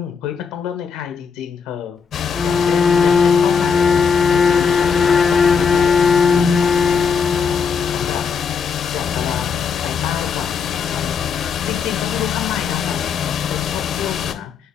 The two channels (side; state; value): right; quieter; 6.1 dB